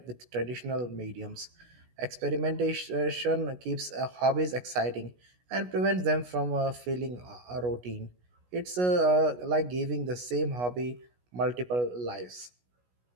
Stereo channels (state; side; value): late; left; 16 ms